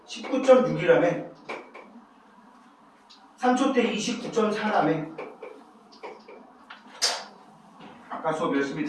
19.6이라며. 3초 때 29.4라며. 아까 수업 열심히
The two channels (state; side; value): identical; both; correlation 1.00